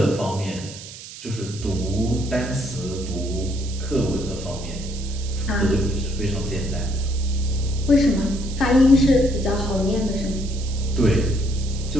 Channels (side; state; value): right; noise; hiss, 14 dB below the sound